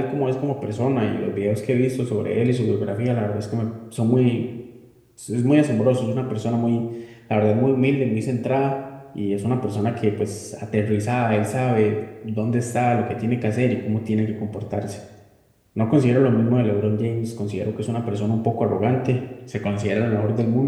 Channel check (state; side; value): identical; both; correlation 1.00